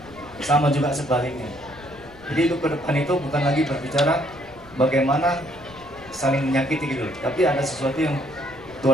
Sama juga sebaliknya. Jadi hidup ke depan itu bukan lagi berbicara bagaimana saling menyakiti gitu, tapi ada sesuatu yang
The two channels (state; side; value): noise; left; rumble, 23 dB below the sound